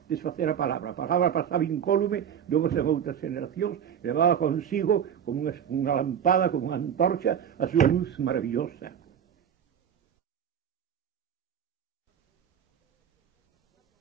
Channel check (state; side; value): quieter; left; 8.7 dB